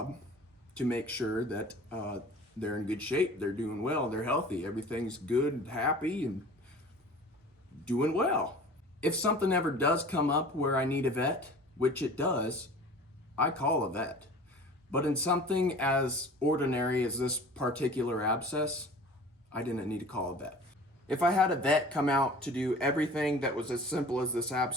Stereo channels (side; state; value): both; normal; correlation 0.43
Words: to make sure that they're in good shape, they're doing well, they're healthy, everything's good and happy and doing well. If something ever does come up where I need a vet, which it does, I call a vet. But in something as ordinary as this particular abscess, I didn't need to call a vet. If I had a vet come out to do everything that was as simple as this